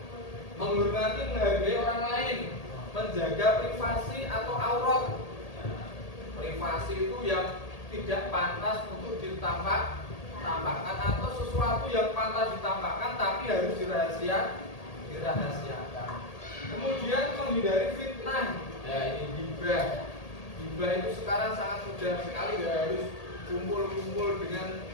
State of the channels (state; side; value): late; right; 1.8 ms